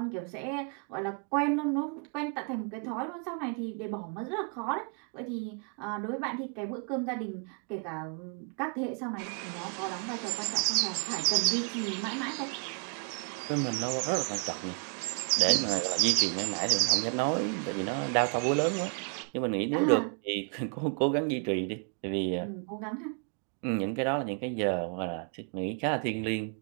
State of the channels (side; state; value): left; quieter; 40.0 dB